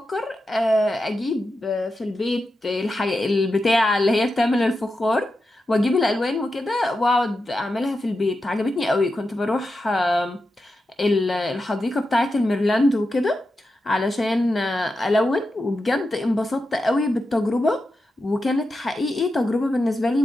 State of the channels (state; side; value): normal; both; correlation 0.89